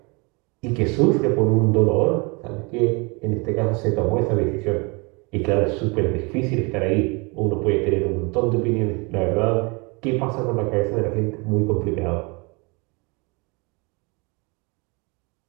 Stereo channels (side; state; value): left; quieter; 29.4 dB